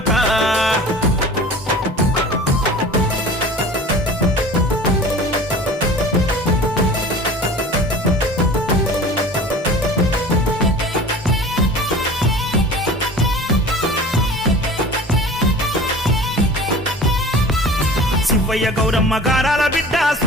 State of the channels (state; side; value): normal; both; correlation 0.40